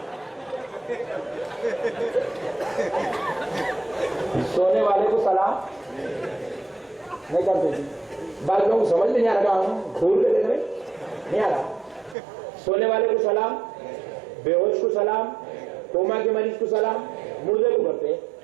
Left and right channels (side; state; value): left; drops out; at 12.2 s